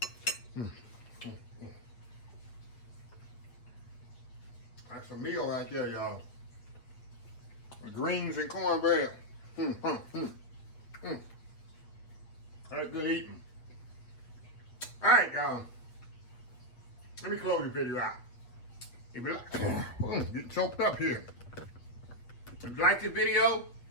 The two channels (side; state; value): right; late; 8.4 ms